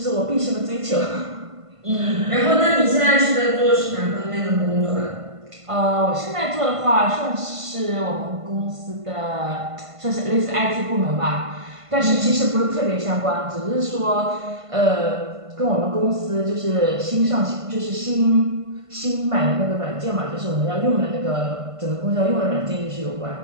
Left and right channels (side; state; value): left; late; 1.5 ms